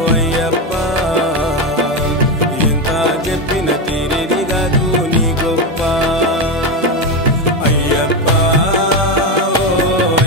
అయ్యప్ప ఎంత చెప్పిన తీరేది కాదు నీ గొప్ప అయ్యప్ప ఓ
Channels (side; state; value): both; normal; correlation 0.12